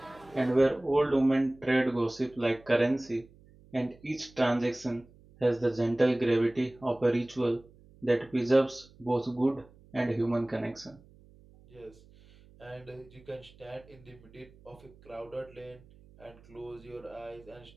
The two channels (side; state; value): right; noise; hum, 26 dB below the sound